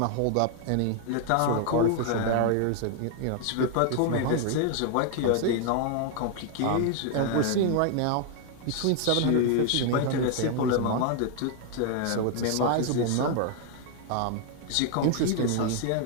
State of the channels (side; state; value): both; different; correlation 0.00